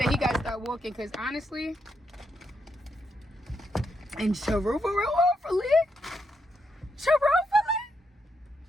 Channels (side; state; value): both; normal; correlation 0.81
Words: he got to start walking because honestly, and truthfully,